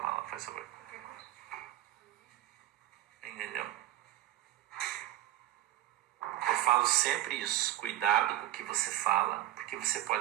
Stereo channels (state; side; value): quieter; left; 14.7 dB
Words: lá, faz favor. Entendeu? falo sempre isso. Cuidado com o que você fala, porque você